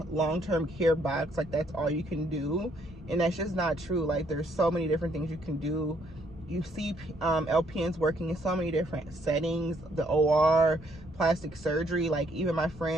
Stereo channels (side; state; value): both; normal; correlation 0.68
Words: long-term care box, like that's all you can do, and that's just not true. Like there's so many different things you can do. You see LPNs working in so many different settings, the OR, plastic surgery. Like even my